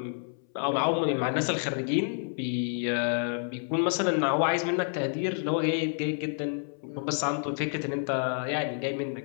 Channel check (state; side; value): silent; right; 59 dB below the other